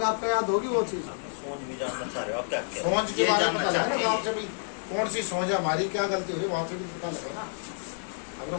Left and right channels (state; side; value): silent; right; digital silence